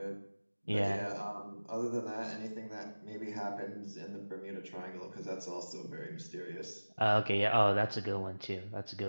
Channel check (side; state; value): both; inverted; correlation -1.00